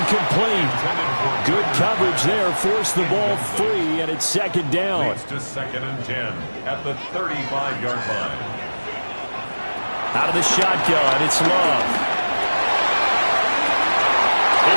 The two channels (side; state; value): both; inverted; correlation -1.00